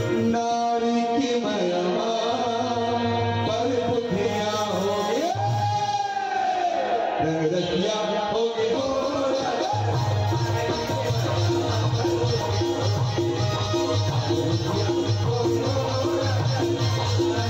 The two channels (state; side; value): identical; both; correlation 1.00